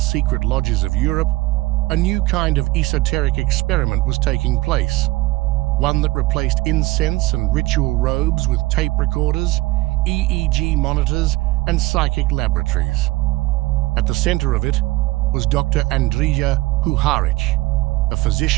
lodges of Europe, a new kind of esoteric experiment was taking place. One that replaced incense and ritual robes with tape recorders, EEG monitors, and psychic laboratories. At the center of it was Dr. Andrija Puharic, a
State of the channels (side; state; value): left; quieter; 20.2 dB